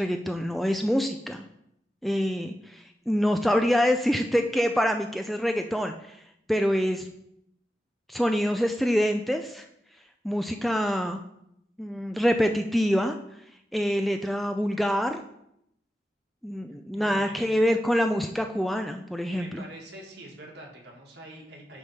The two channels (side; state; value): both; normal; correlation 0.92